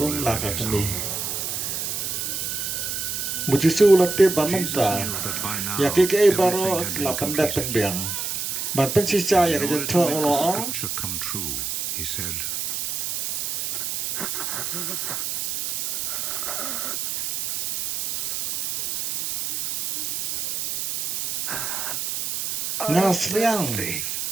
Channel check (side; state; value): right; noise; hiss, 3 dB below the sound